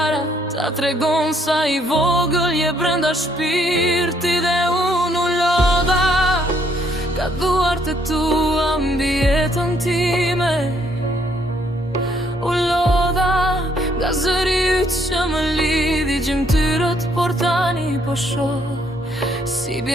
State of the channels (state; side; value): normal; both; correlation 0.68